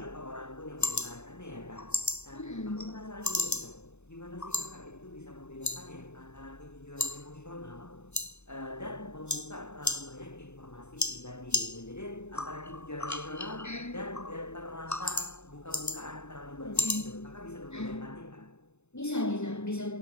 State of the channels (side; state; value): right; late; 0.82 ms